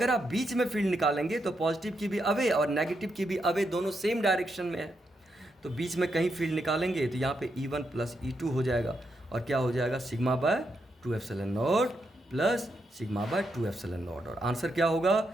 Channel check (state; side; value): normal; both; correlation 0.82